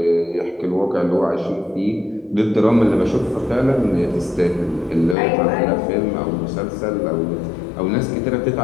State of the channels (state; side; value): drops out; right; at 5.2 s